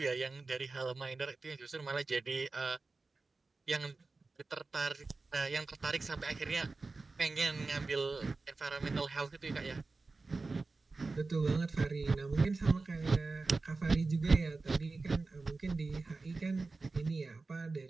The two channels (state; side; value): quieter; left; 3.7 dB